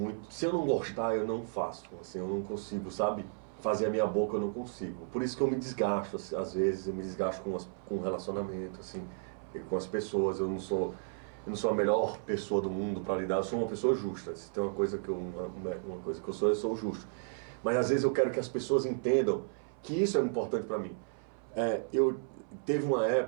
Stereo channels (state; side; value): silent; left; 55 dB below the other